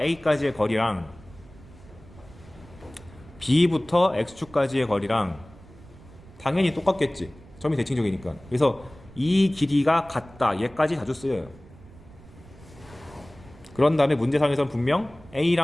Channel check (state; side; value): noise; right; rumble, 21 dB below the sound